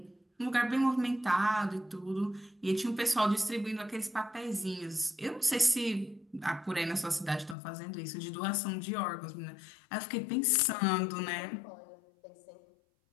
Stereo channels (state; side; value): drops out; right; at 7.6 s